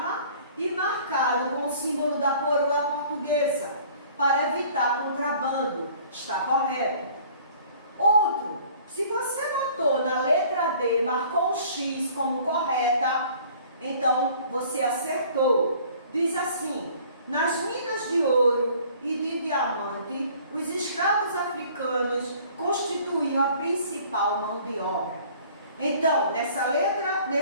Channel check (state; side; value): inverted; both; correlation -0.52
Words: e marcado com o símbolo da coroa portuguesa, para evitar contrabando. Está correto. Outro, se você botou na letra D, marcou um X como correta, então você acertou. Diz assim: nas minas de ouro e de diamante, os escravos africanos constituíam a principal mão de obra. Então, nessa letra,